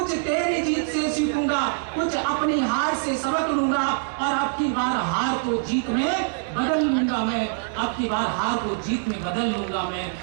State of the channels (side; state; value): left; silent; digital silence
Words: तेरी जीत से सीखूंगा, कुछ अपनी हार से सबक लूंगा, और अब की बार हार को जीत में बदल लूंगा मैं, अब की बार हार को जीत में बदल लूंगा मैं।